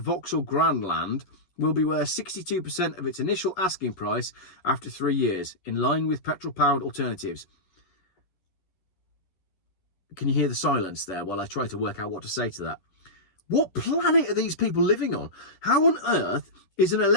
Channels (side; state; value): right; late; 11 ms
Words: Grandland will be worth 62% of its initial asking price after 3 years, in line with petrol-powered alternatives. Can you hear the silence there while I try to work out what to say to that? What planet are these people living on? How on earth is an